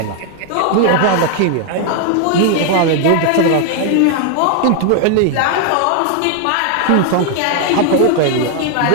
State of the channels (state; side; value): different; both; correlation 0.00